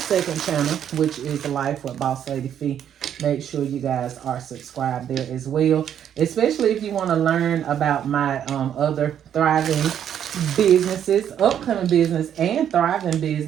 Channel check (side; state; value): left; quieter; 9.5 dB